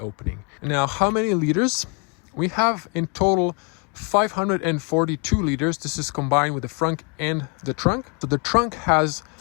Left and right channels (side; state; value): right; quieter; 34.8 dB